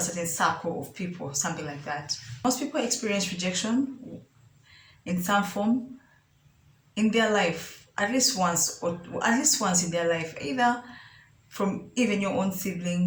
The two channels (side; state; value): both; identical; correlation 1.00